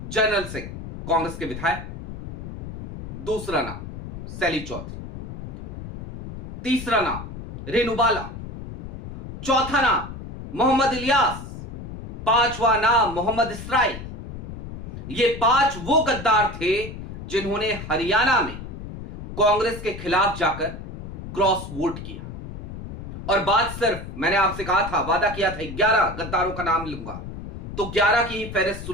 जनरल सिंह, कांग्रेस के विधायक। दूसरा नाम सैली चौधरी। तीसरा नाम रेणु बाला। चौथा नाम मोहम्मद इलियास। 5वां नाम मोहम्मद इसराइल। ये 5 वो गद्दार थे जिन्होंने हरियाणा में कांग्रेस के खिलाफ जाकर क्रॉस वोट किया। और बात सिर्फ, मैंने आपसे कहा था, वादा किया था 11 गद्दारों का नाम लूंगा, तो 11 की ही फहरिस्त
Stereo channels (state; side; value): noise; left; rumble, 10 dB below the sound